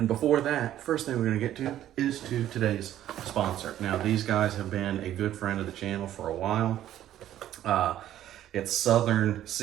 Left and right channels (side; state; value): left; quieter; 12.2 dB